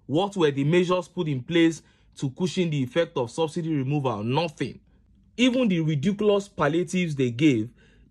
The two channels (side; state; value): both; identical; correlation 1.00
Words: What were the measures put in place to cushion the effect of subsidy removal? Nothing. Even the ridiculous palliatives they gave